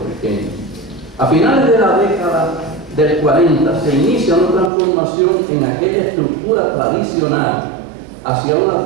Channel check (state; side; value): drops out; left; at 4.7 s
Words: A finales de la década del 40 se inicia una transformación en aquella estructura tradicional hacia una